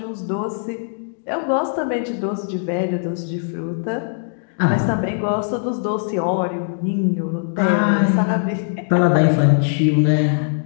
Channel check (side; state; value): right; silent; digital silence